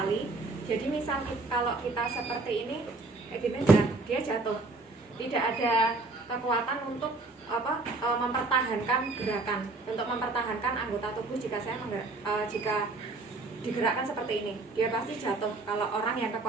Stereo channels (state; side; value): quieter; left; 3.4 dB